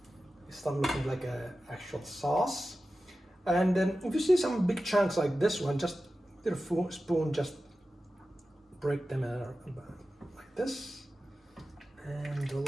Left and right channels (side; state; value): both; normal; correlation 0.94